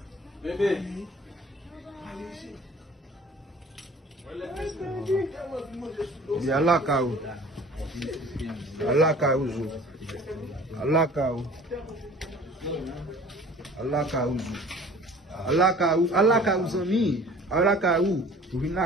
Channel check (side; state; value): both; normal; correlation 0.47